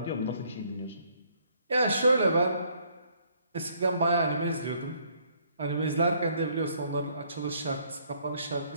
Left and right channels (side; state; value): both; inverted; correlation -0.65